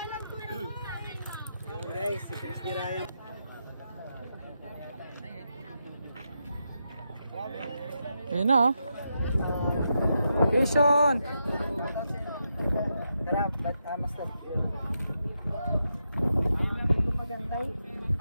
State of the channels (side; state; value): both; inverted; correlation -0.84